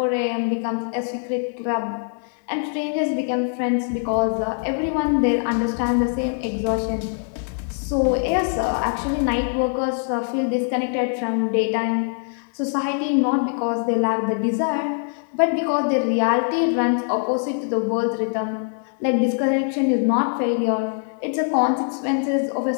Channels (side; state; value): right; silent; 64 dB below the other